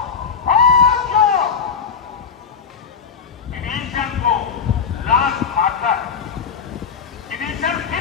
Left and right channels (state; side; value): quieter; right; 6.3 dB